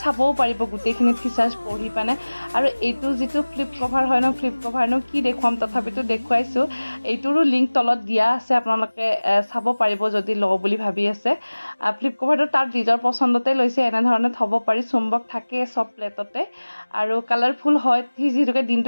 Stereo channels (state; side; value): inverted; both; correlation -1.00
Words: চাবও পাৰিব গোটেইখিনি ফিচাৰ্ছ পঢ়ি পানে আৰু এইটো যিটো ফ্লিপ কভাৰনো কি দেখুৱাম তথাপিতো দেখুৱাইছোঁ এইটোৰো লিংক তলত দিয়া আছে আপোনালোকে চাব পাৰিব যদি লওঁ বুলি ভাবি আছে ফ্লিপ কভাৰটো তাৰ নিজৰ পচন্দতে লৈছে এনেধৰণে থ'ব পাৰি চুম্বক থাকে চব প্লেটতে আৰু কালাৰফুল হয় সি যিহেতুকে